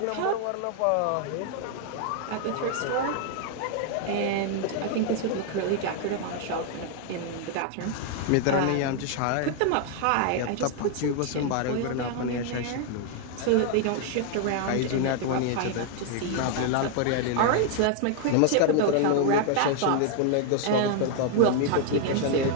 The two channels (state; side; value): different; both; correlation 0.00